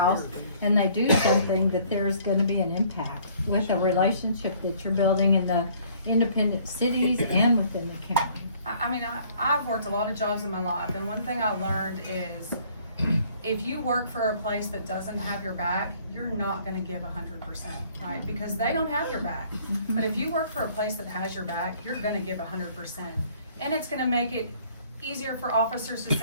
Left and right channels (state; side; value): inverted; both; correlation -0.58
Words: and they do something, that there's going to be an impact with a relationship that you're building in the independent cities and within the county. I mean, I've worked a lot of jobs in my life, and one thing I learned is if you work for a place that doesn't have your back, you're not gonna give 100%, right? Because they don't have your back. But if you work for a place that has your back, you're gonna give 100%. And it's gonna make it easier for officers to